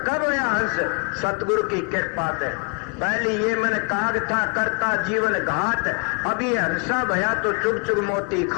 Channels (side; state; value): right; quieter; 35.8 dB